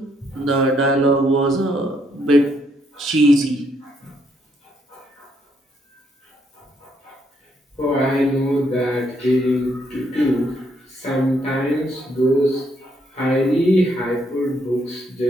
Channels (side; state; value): both; normal; correlation 0.73